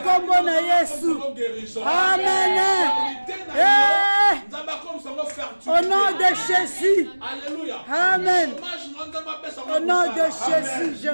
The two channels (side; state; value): both; inverted; correlation -1.00